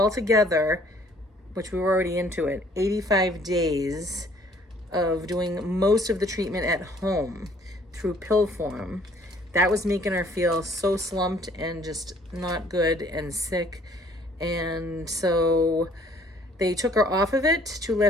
which we were already into it, 85 days of doing most of the treatment at home through pill form. That was making her feel so slumped and just not good and sick. And so they took her off of it to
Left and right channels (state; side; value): normal; both; correlation 0.59